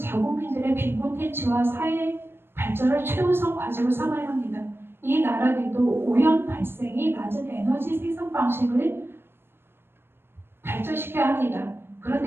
빈곤 퇴치와 사회 발전을 최우선 과제로 삼아야 합니다. 이 나라들도 오염 발생이 낮은 에너지 생산 방식을 발전시켜야 합니다.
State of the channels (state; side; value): late; left; 0.11 ms